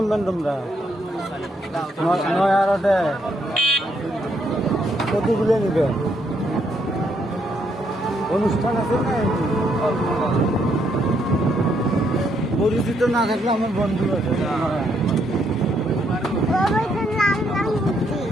তোমরা? নয়ারটে কতগুলো নিবে? অনুষ্ঠান আছে না? পরিচিত না থাকলে আমার বন্ধু আছে।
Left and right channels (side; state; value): both; normal; correlation 0.74